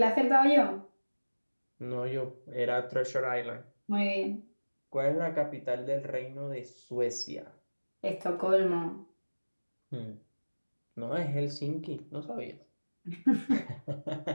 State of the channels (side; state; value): both; inverted; correlation -1.00